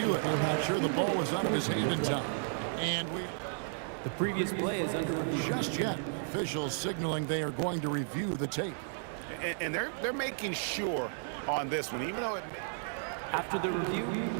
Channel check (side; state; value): left; silent; digital silence